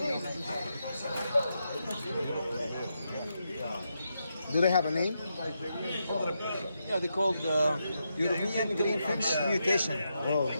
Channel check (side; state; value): both; inverted; correlation -0.84